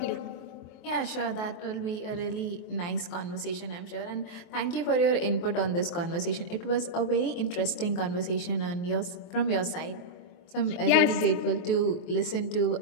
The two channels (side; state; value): right; late; 23 ms